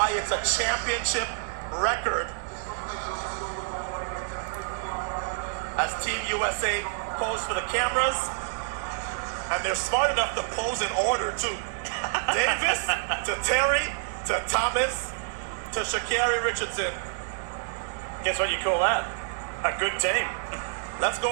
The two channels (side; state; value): left; silent; digital silence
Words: it's a championship record. As Team USA pose for the cameras, and they're smart enough to pose in order too. Davis to Terry to Thomas to Sha'Carri Richardson. Guess what you call that? A good team. Let's